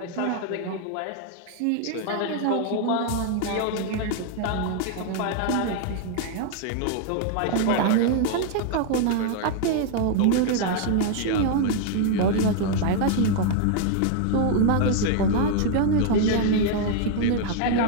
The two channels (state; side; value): different; both; correlation 0.00